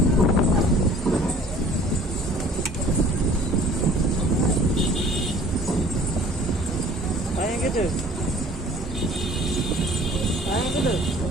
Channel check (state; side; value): normal; both; correlation 0.50